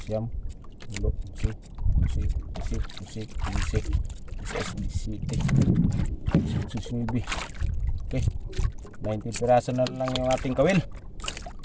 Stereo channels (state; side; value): identical; both; correlation 1.00